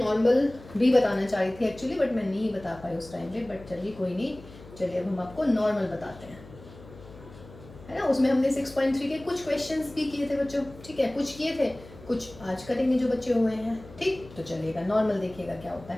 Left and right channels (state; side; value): noise; left; hum, 19 dB below the sound